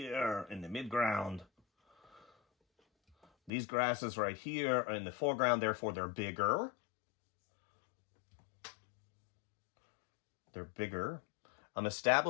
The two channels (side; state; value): right; drops out; at 3.5 s